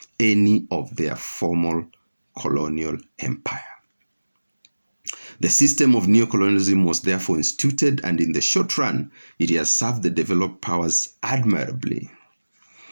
any of their former colonial empire. The system of neocolonialism was therefore instituted, and in the short run, it has served the developed powers admirably.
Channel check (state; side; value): inverted; both; correlation -1.00